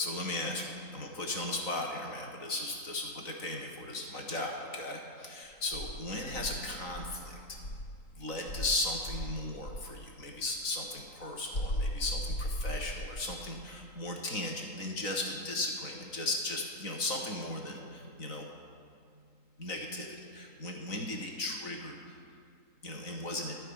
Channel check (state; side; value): late; right; 4.0 ms